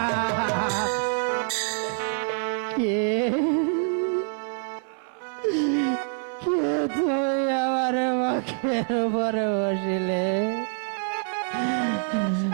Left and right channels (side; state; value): left; silent; 61 dB below the other